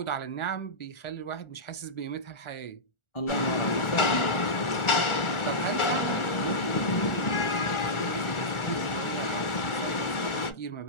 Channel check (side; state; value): right; late; 1.4 ms